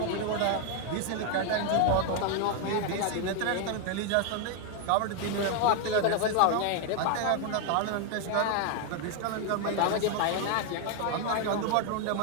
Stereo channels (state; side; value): different; both; correlation 0.01